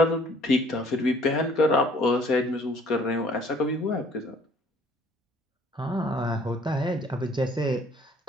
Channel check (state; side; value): normal; both; correlation 0.58